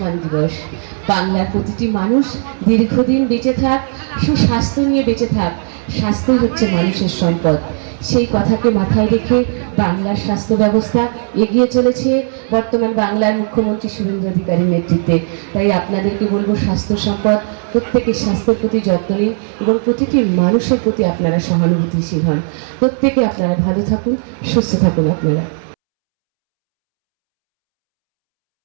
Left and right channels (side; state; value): left; silent; 69 dB below the other